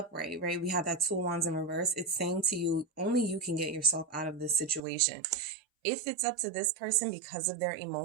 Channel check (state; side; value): drops out; left; at 4.8 s